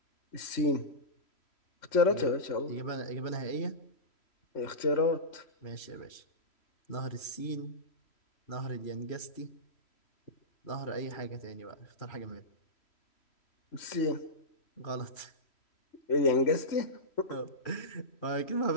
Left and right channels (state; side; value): late; right; 3.1 ms